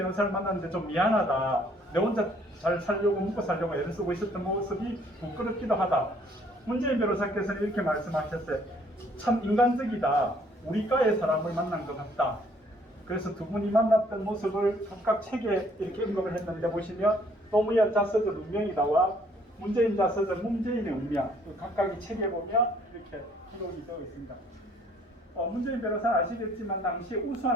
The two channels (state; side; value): normal; both; correlation 0.62